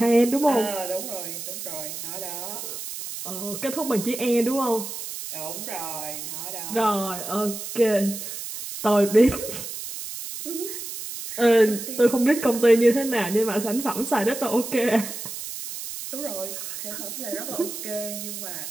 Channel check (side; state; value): right; noise; hiss, 8 dB below the sound